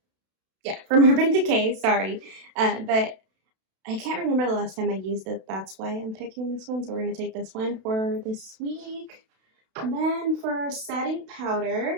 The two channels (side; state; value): left; late; 32 ms